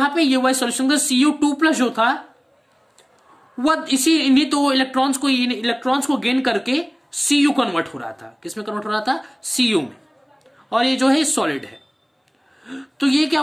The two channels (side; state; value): both; identical; correlation 1.00